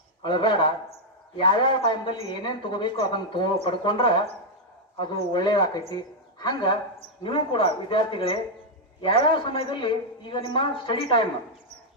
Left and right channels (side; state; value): both; normal; correlation -0.02